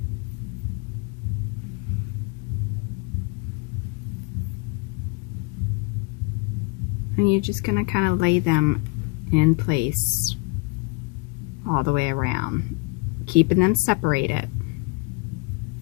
And you're just going to kind of lay them in place all the way around, keeping them separated.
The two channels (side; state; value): right; quieter; 29.0 dB